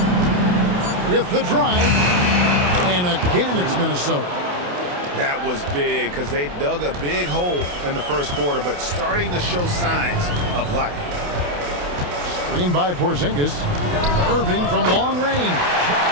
With the drive. And again, it's Minnesota. That was big because they dug a big hole in the first quarter, but starting to show signs of life. Screen by Porzingis. Irving from long range.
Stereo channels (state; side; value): late; left; 28 ms